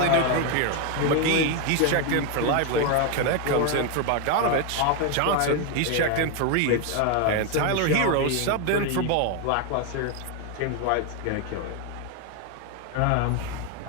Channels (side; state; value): both; different; correlation 0.01